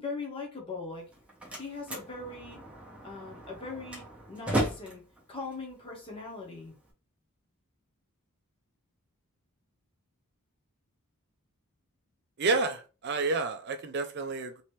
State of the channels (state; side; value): normal; both; correlation 0.02